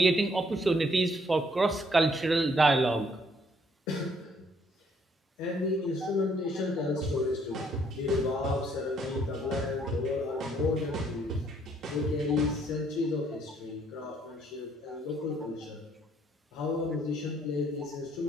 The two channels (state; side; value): normal; both; correlation 0.67